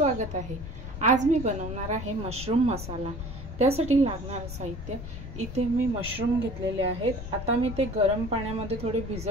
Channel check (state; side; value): noise; left; rumble, 9 dB below the sound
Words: आहे। आज मी बनवणार आहे मशरूम मसाला। त्यासाठी लागणारे साहित्य इथे मी मशरूम घेतलेले आहेत। आता मी ते गरम पाण्यामध्ये थोडे